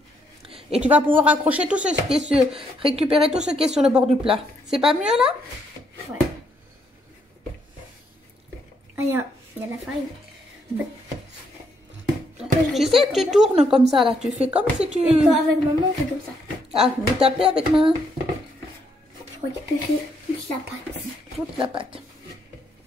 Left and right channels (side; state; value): both; normal; correlation 0.74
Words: Et tu vas pouvoir accrocher tout ce qui est sur... récupérer tout ce qui est sur le bord du plat. C'est pas mieux, là? Ouais. Ah, il y a la farine. Tu sais, tu tournes comme ça, là. Tu fais comme si tu... Et toi, avec maman, on fait comme ça. Ah, vous tapez avec main? Je récupère toute la pâte. Toute la pâte.